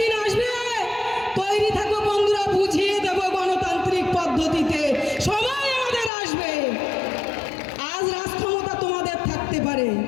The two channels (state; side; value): drops out; right; at 6.1 s